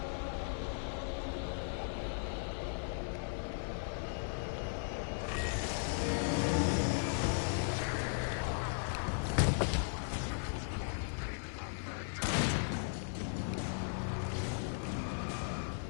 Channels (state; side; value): silent; right; 53 dB below the other